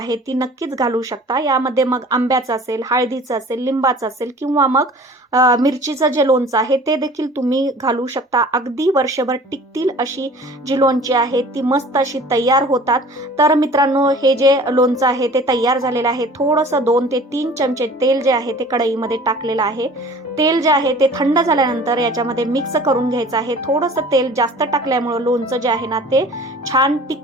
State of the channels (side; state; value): both; normal; correlation 0.46